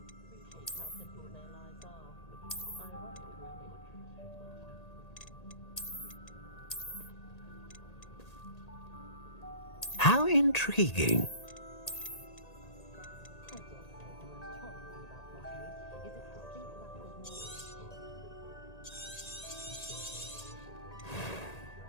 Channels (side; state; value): right; late; 1.8 ms